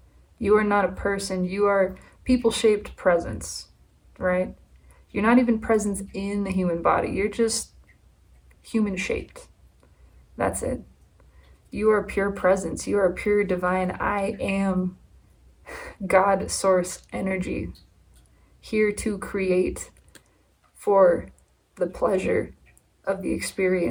You are not a person. You are people-shaped presence, right? You're not even presence in the human body. You're just human-shaped. That's it. You are pure presence. You are pure divine. I am God source energy, here to create for the pleasure of the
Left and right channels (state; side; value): identical; both; correlation 1.00